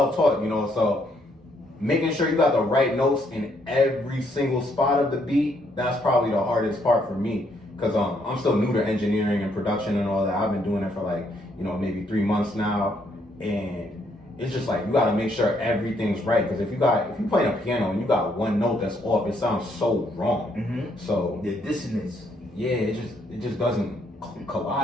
you know. So making sure you got the right notes in every single spot of the beat, that's probably the hardest part for me. Cause I'm still new to engineering and production and all that. I've been doing it for like, maybe 3 months now, and it's just like you gotta make sure everything's right. Cause if you playing a piano and you got one note that's off, it sounds so wrong. Mm-hmm. So the dissonance. Yeah, it just doesn't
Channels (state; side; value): normal; both; correlation 0.71